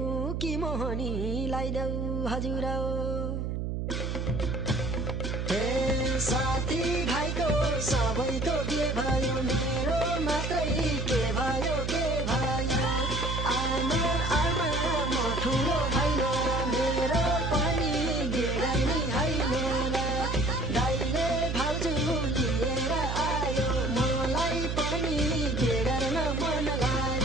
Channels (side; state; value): right; noise; hum, 2 dB below the sound